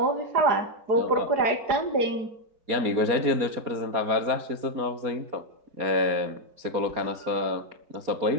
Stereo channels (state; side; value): late; left; 4.3 ms